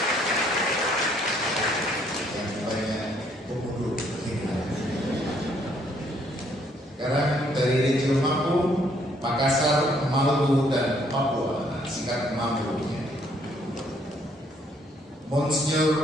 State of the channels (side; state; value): both; normal; correlation 0.67